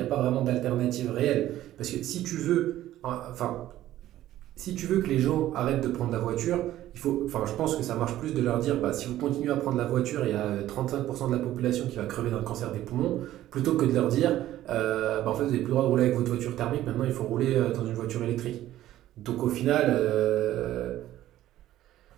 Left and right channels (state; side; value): quieter; left; 13.8 dB